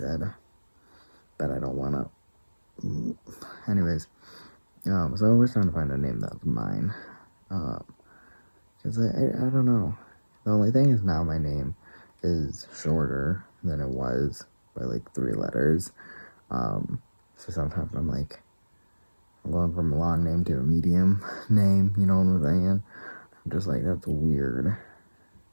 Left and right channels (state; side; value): inverted; both; correlation -1.00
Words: but I don't want to. Anyways, so we're trying to find a name that's mine. Because I don't know. The only thing is now my name is shorter than it was by like 3 letters. So sometimes I'm like, I'm going from a long name to a medium name, you know what I'm saying? I'm just like, that's weird.